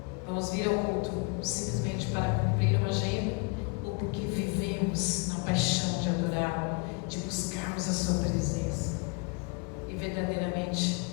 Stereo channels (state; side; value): quieter; right; 32.0 dB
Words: Vamos vir ao culto simplesmente para cumprir uma agenda, ou porque vivemos na paixão de adorar, de buscarmos a sua presença. e verdadeiramente